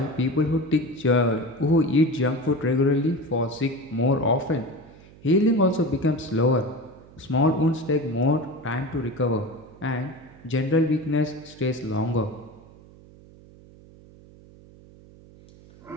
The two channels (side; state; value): right; noise; hum, 23 dB below the sound